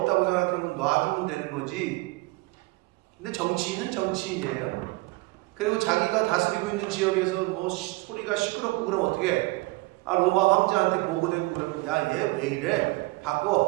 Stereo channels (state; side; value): quieter; left; 23.6 dB